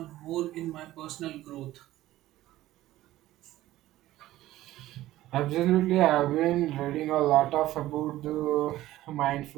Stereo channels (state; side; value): quieter; left; 15.4 dB